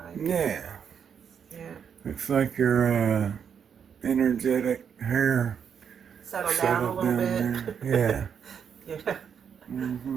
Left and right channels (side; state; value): left; quieter; 7.5 dB